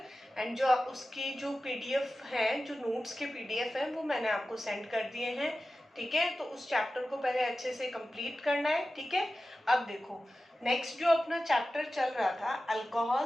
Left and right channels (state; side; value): normal; both; correlation 0.94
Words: एंड जो उसकी जो पीडीएफ है, जो नोट्स के पीडीएफ है वो मैंने आपको सेंड कर दिए हैं। ठीक है, तो उस चैप्टर को पहले अच्छे से कंप्लीट करना है। ठीक है, अब देखो नेक्स्ट जो अपना चैप्टर चल रहा था